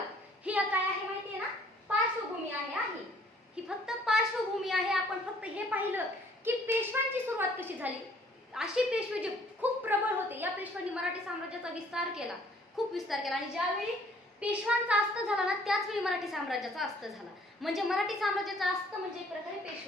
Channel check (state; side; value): normal; both; correlation 0.59